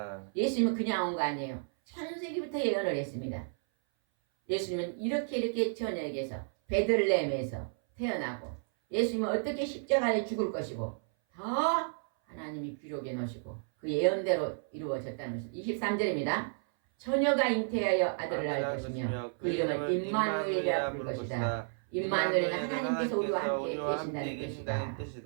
예수님은 그냥 온 거 아니에요. 창세기부터 예언을 했습니다. 예수님은 이렇게 처녀에게서 베들레헴에서 태어나고 예수님은 어떻게 십자가에 죽을 것이고 다 하나님이 기록해 놓으시고 그 예언대로 이루어졌다는 것입니다. 23절입니다. 처녀가 잉태하여 아들을 낳을 것이며 그 이름을 임마누엘이라 부를 것이다. 임마누엘은 하나님께서 우리와 함께 계신다는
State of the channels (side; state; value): left; silent; 56 dB below the other